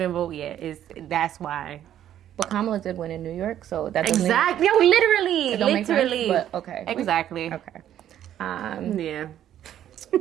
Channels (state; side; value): quieter; left; 11.1 dB